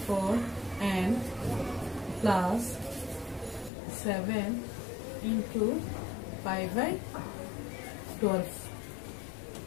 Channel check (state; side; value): drops out; right; at 3.7 s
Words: and plus 7 into pi by 12,